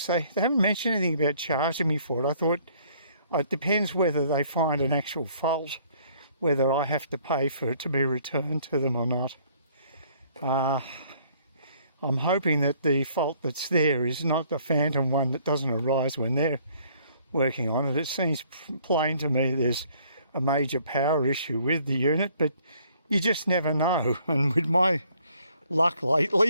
They haven't mentioned anything about charging me for it. I thought it depends whether they find an actual fault, whether I have to pay for it to be returned to them or not. I'm hoping that the fault that's there is not the phantom one that doesn't arise when they're working on it. It seems plain to me there's a major power issue with the unit, but you just never know. And with my luck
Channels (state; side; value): inverted; both; correlation -0.61